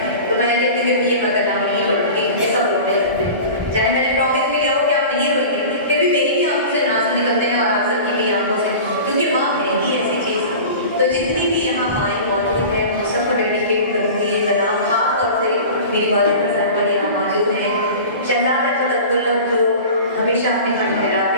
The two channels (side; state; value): both; inverted; correlation -0.36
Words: तो मैं कहती हूँ कि भैया मैं कलाम नहीं पढ़ूंगी ये सब रोने लगते हैं चाहे मैंने प्रॉमिस भी लिया हो कि आप नहीं रोएंगे फिर भी मेरी भी आंखों से आंसू निकलते हैं और आप सबकी भी आंखों से क्योंकि माँ है ही ऐसी चीज़। तो जितनी भी यहाँ माएँ मौजूद हैं उन सबको डेडिकेट करूँगी ये कलाम खास तौर से मेरी वालिदा सर पर यहाँ मौजूद हैं शहजाद अहमद अब्दुल्ला जो हमेशा अपने घर ठहराते